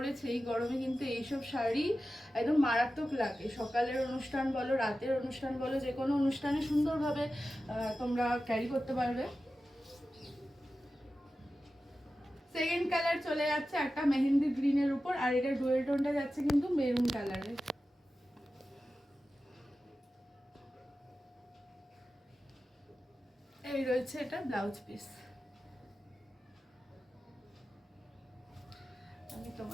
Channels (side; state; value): both; normal; correlation 0.93